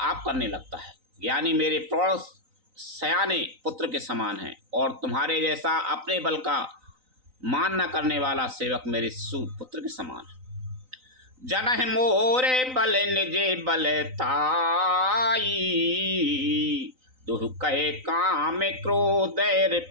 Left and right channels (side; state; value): left; late; 3.9 ms